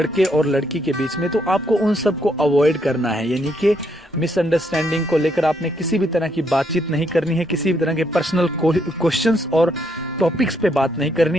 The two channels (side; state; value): both; normal; correlation 0.74